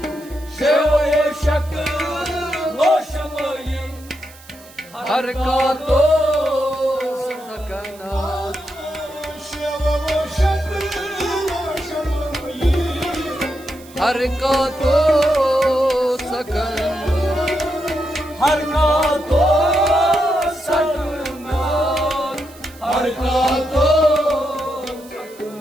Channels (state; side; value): noise; right; hiss, 22 dB below the sound